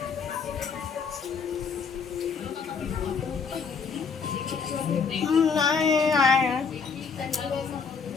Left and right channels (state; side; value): quieter; right; 5.6 dB